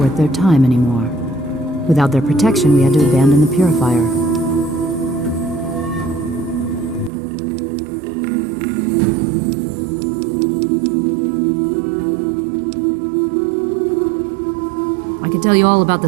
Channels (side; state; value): left; drops out; at 7.1 s